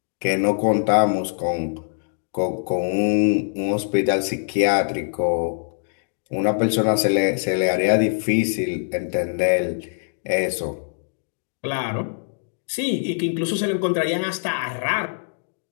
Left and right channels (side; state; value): right; silent; digital silence